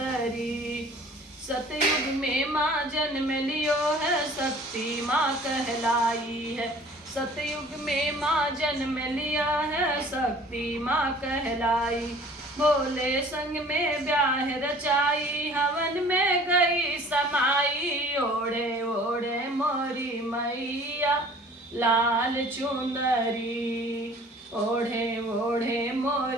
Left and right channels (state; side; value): normal; both; correlation 0.49